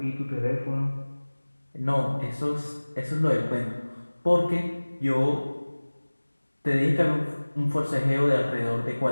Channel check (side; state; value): both; inverted; correlation -1.00